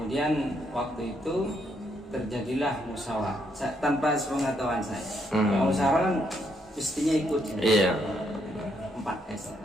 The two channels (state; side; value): normal; both; correlation 0.75